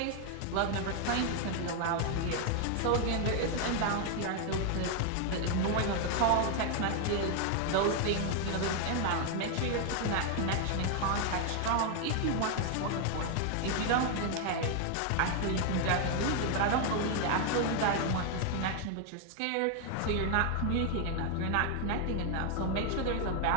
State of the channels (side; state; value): both; different; correlation 0.00